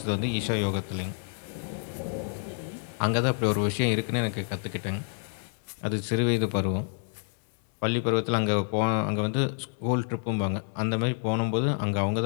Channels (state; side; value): silent; right; digital silence